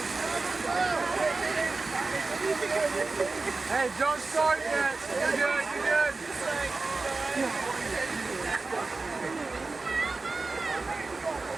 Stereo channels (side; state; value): left; quieter; 3.7 dB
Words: Hey, don't start yet. You're good, you're good.